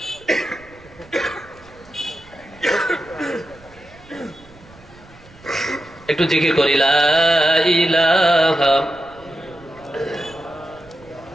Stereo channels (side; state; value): right; noise; rumble, 24 dB below the sound